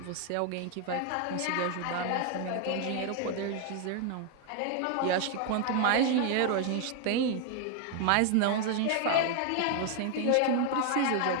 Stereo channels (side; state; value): both; different; correlation 0.00